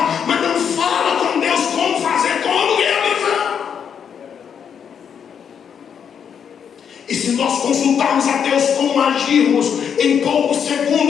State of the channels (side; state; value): right; quieter; 7.6 dB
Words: mas não fala com Deus como fazer, como realizar. E se nós consultarmos a Deus como agirmos em poucos